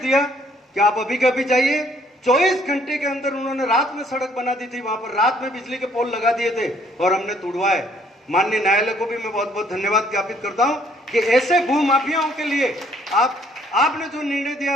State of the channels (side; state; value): both; normal; correlation 0.64